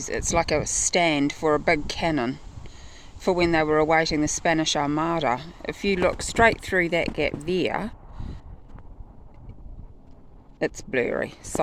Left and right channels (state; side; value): identical; both; correlation 1.00